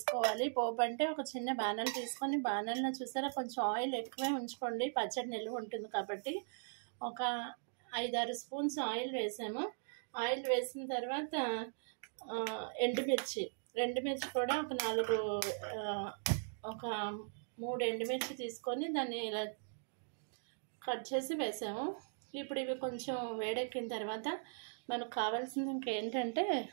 పోపు అంటే ఒక చిన్న బాణలు తీసుకొని, బాణల్లో చూసారా కొంచెం ఆయిల్ ఎక్కువే ఉంచుకోండి, పచ్చడి నిల్వ ఉంటుంది కాబట్టి. ఒక 5-6 స్పూన్స్ ఆయిల్ వేసాము. ఆయిల్ వేసిన తర్వాత ఎండుమిర్చి కూడా ఒక 3 ఎండుమిర్చి తీసుకొని దాన్ని ఇలా కట్ చేసి వేసాము. ఇప్పుడు ఇవి కొంచెం వేడెక్కిన తర్వాత మనకు కావాల్సింది ఇంకేంటంటే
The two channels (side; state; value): left; silent; digital silence